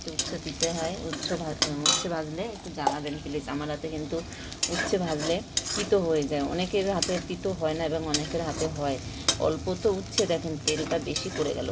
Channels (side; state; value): both; identical; correlation 1.00